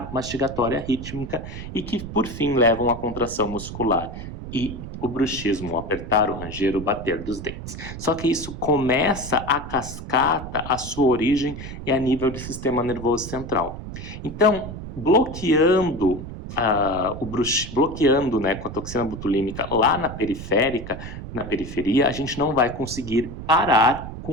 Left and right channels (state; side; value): noise; right; rumble, 10 dB below the sound